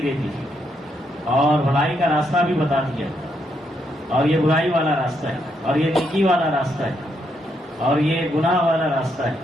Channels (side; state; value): both; normal; correlation 0.77